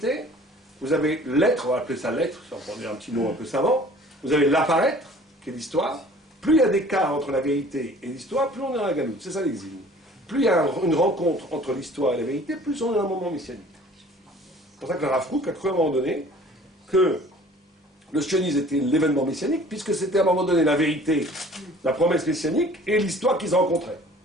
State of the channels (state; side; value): normal; both; correlation 0.50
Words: vous avez l'être, on va appeler ça l'être, si on prend un petit mot un peu savant, vous avez l'apparaître, qui est l'histoire. Plus il y a d'écart entre la vérité et l'histoire, plus on est dans la galoute. C'est ça l'exil. Plus il y a une rencontre entre l'histoire et la vérité, plus on est dans un moment messianique. C'est pour ça que le Rav Kook a cru à un moment donné que le sionisme était l'événement messianique, puisque c'était à un moment donné la vérité, la promesse messianique et l'histoire qu'ils rencontraient.